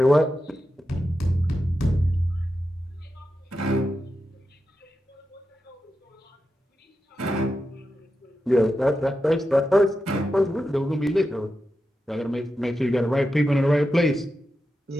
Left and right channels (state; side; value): normal; both; correlation 0.90